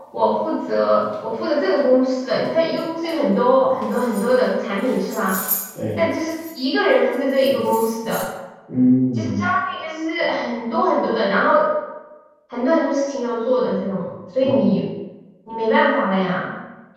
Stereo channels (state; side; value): identical; both; correlation 1.00